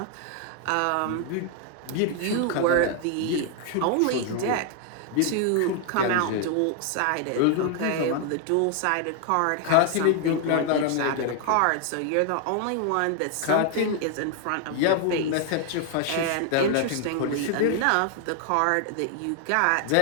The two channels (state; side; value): different; both; correlation 0.00